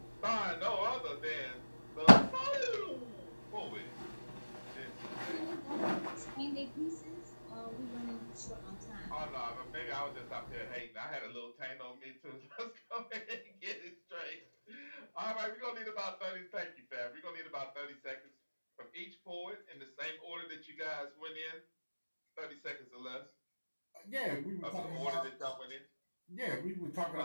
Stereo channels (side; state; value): both; inverted; correlation -1.00